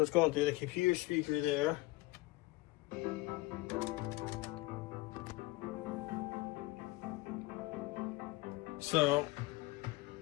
it's going through the computer speaker there. So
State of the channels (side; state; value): right; quieter; 20.1 dB